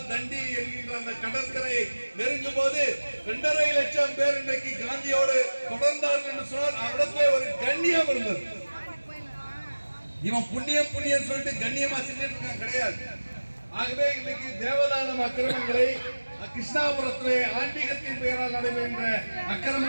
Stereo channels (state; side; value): inverted; both; correlation -1.00